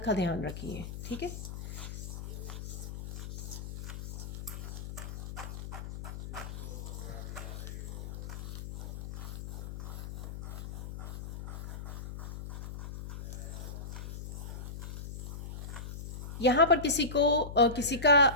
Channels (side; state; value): left; noise; hum, 8 dB below the sound